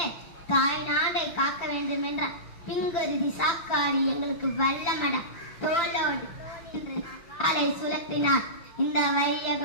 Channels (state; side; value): late; right; 5.9 ms